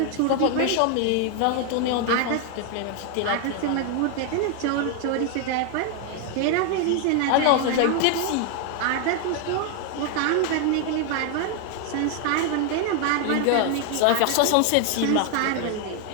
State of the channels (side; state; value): both; different; correlation 0.00